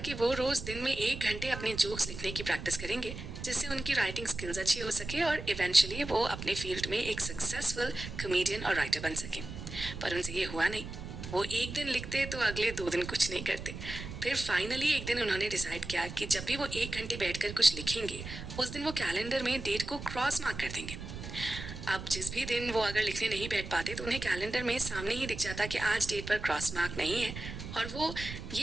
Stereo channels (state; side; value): noise; right; rumble, 9 dB below the sound